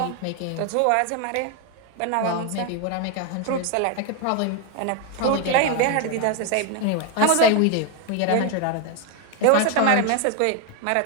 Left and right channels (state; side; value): different; both; correlation 0.01